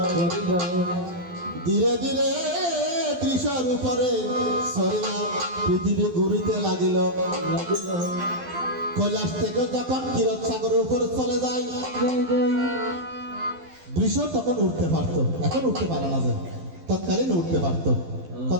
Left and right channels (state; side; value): late; left; 12 ms